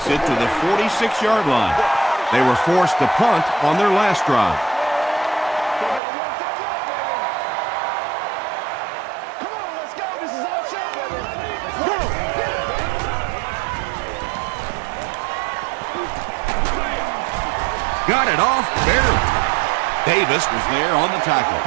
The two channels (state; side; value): drops out; left; at 6.0 s